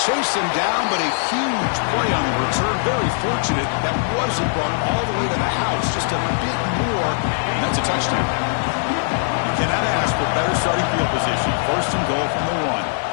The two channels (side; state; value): right; silent; digital silence